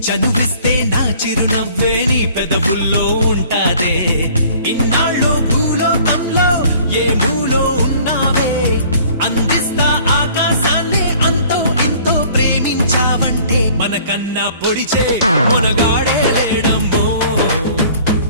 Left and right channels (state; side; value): inverted; both; correlation -0.53